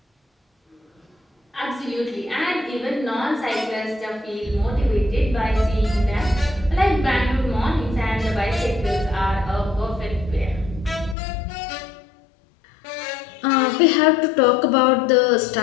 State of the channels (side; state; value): right; drops out; at 11.2 s